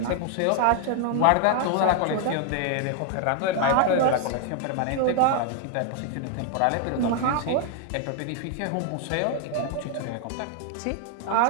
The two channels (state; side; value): different; both; correlation 0.00